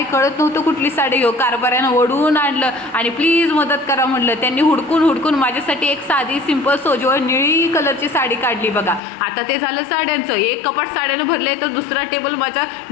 कळत नव्हतं कुठली साडी घेऊ. कारभाऱ्यानं ओढून आणलं आणि प्लीज मदत करा म्हणलं. त्यांनी हुडकून हुडकून माझ्यासाठी एक साधी सिंपल सोजवळ निळी कलरची साडी काढली बघा. आता ते झालं साड्यांचं. एक कपाट साड्यानं भरले तर दुसरा टेबल माझा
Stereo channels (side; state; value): right; drops out; at 9.0 s